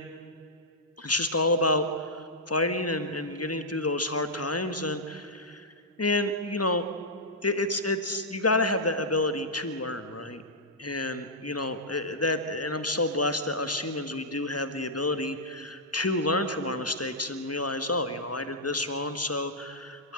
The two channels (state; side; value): normal; both; correlation -0.11